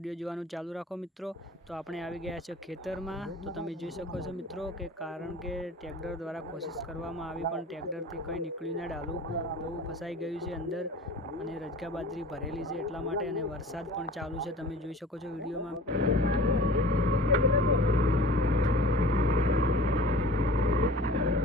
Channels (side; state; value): both; normal; correlation 0.43